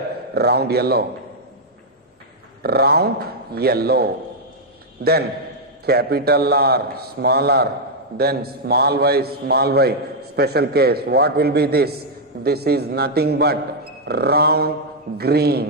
Round yellow. Round yellow. Then capital R, small r, then small y. Special case. What will be this? This is nothing but round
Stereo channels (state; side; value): normal; both; correlation -0.03